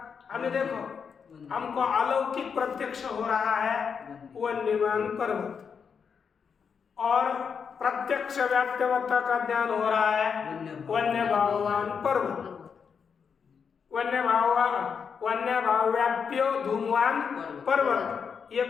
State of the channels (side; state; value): right; quieter; 6.4 dB